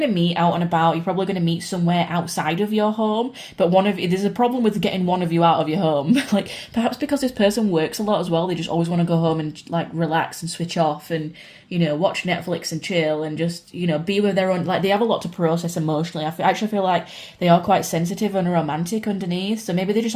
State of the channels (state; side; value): identical; both; correlation 1.00